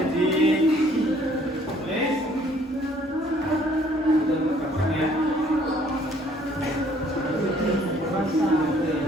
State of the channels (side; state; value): both; normal; correlation 0.60